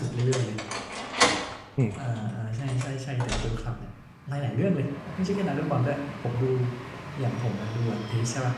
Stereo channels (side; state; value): both; identical; correlation 1.00